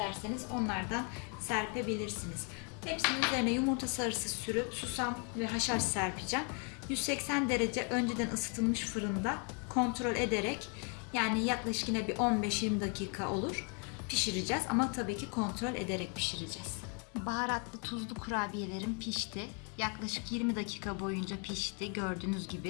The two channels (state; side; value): quieter; right; 37.4 dB